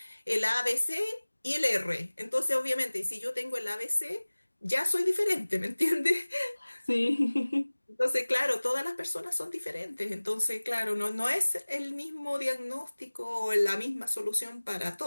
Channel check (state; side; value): inverted; both; correlation -1.00